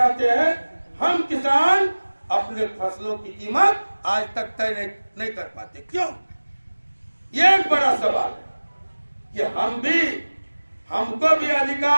हैं, हम किसान अपने फसलों की कीमत आज तक तय नहीं कर पाते। क्यों? ये एक बड़ा सवाल है कि हमको भी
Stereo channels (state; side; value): inverted; both; correlation -1.00